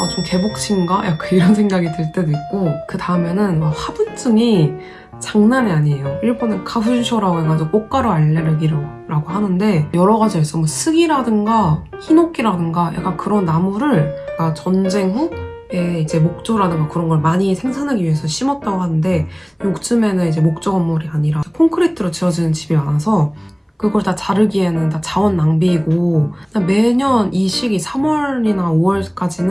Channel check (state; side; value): identical; both; correlation 1.00